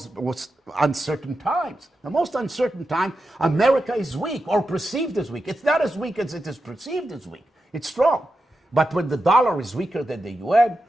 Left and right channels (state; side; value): normal; both; correlation 0.89